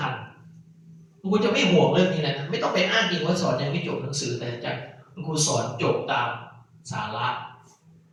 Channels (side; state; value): both; identical; correlation 1.00